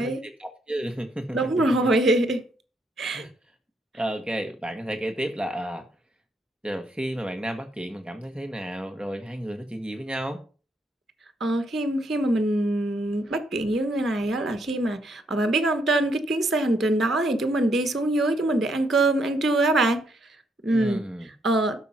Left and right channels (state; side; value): normal; both; correlation 0.74